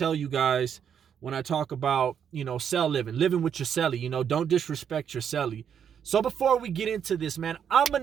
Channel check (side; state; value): left; quieter; 8.2 dB